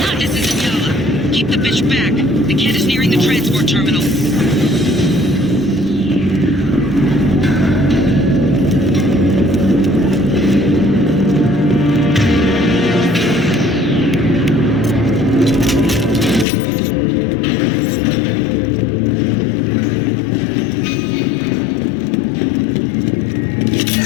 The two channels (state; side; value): drops out; right; at 16.4 s